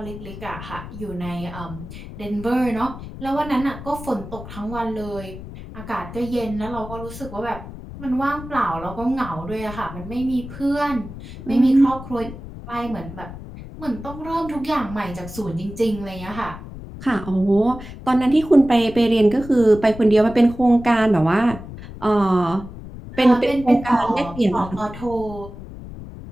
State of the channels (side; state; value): left; noise; rumble, 13 dB below the sound